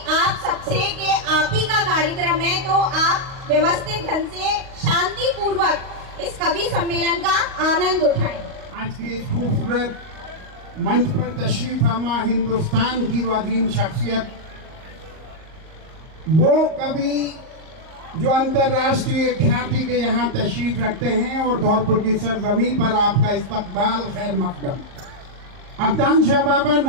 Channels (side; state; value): left; late; 38 ms